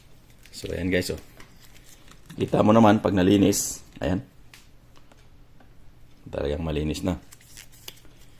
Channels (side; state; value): both; identical; correlation 1.00